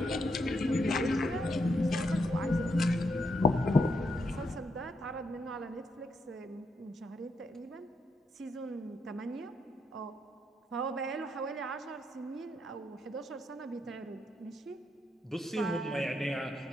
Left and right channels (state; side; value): normal; both; correlation 0.80